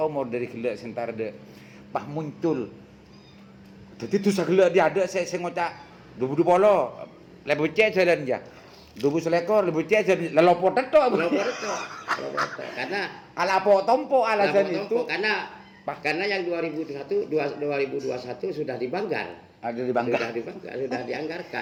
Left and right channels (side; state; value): both; identical; correlation 1.00